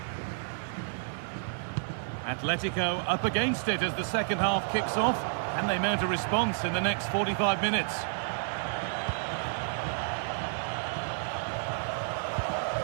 Atletico up against it as the second half kicks off, and they mount a response in the next 45 minutes.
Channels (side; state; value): left; silent; 57 dB below the other